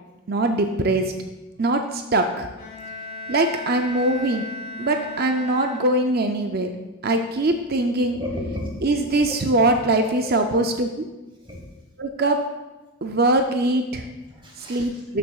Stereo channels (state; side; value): normal; both; correlation 0.12